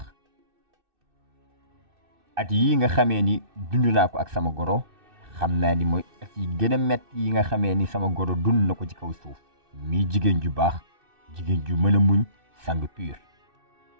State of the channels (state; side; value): late; left; 2.6 ms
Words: at yi nga xamee ni dund naa ko ak sama goro xam naa ni mooy at yi gën a metti yi nga xamee ni sama goro dund na ko ci kaw suuf mii jigéen ju baax jigéen ju mën a muñ sang pur